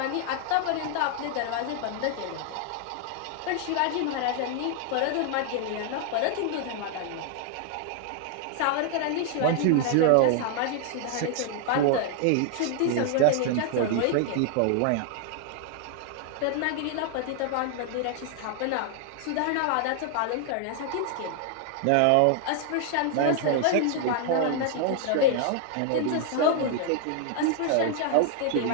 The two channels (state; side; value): different; both; correlation 0.00